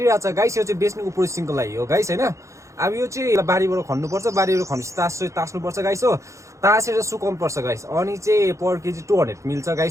छ गाइस। यो चाहिँ बेच्नुको प्रोसेसिङको लागि हो गाइस हैन। अब यो चाहिँ बारीबाट खन्नुपर्छ। बारीबाट खनेपछि तास्नुपर्छ गाइस हो। तासेर सुकाउनु पर्छ गाइस। अनि चाहिँ पर केजी 200 मिल्छ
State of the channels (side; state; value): left; late; 0.15 ms